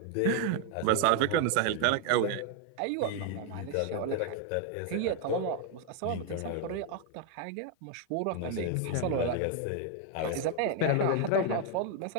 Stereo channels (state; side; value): different; both; correlation 0.01